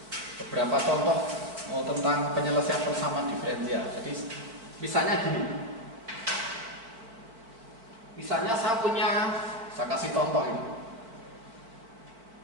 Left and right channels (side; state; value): left; late; 4.4 ms